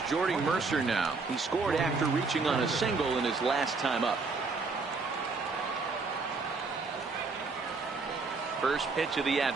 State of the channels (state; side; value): quieter; left; 4.2 dB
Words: Jordy Mercer now. He scored after reaching on a single in his last time up. First pitch of the